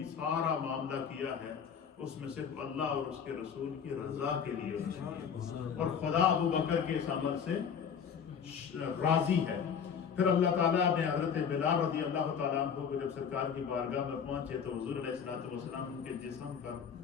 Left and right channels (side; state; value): right; quieter; 7.2 dB